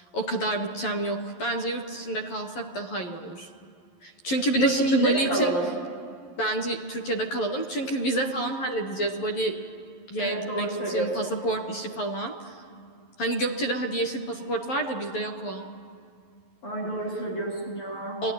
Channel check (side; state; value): right; late; 11 ms